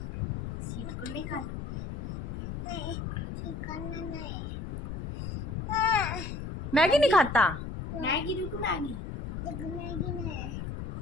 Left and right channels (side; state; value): left; noise; rumble, 6 dB below the sound